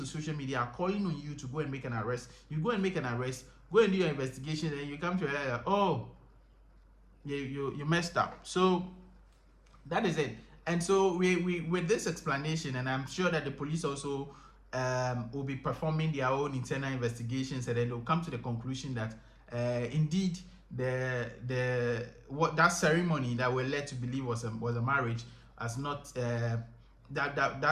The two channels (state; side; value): identical; both; correlation 1.00